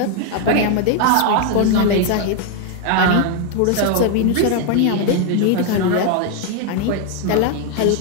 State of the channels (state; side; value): different; both; correlation 0.01